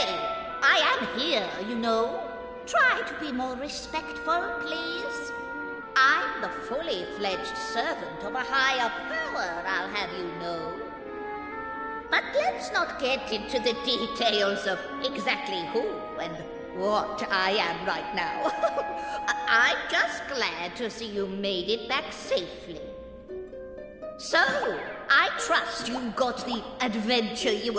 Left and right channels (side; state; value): both; identical; correlation 1.00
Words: I am here, you know. Try to be more respectful, please. I'm the fully fledged servant of a higher power, I'll have you know. But let's not get into the details of exactly who and what I am right now. I'm just glad to see you made it back safely. So, I trust you got the adventure you